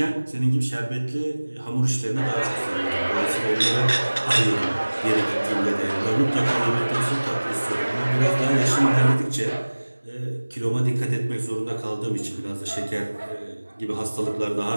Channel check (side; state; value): both; inverted; correlation -1.00